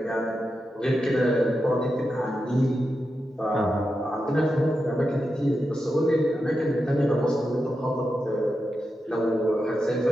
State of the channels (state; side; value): normal; both; correlation 0.89